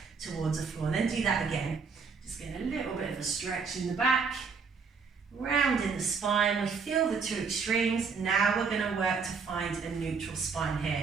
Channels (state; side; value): quieter; left; 5.3 dB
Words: towards the floor. And then do that again. Just get a little bit of a stretch in the back. Rounding the spine, we feel the two extremes. Now we're going to work to find a neutral spine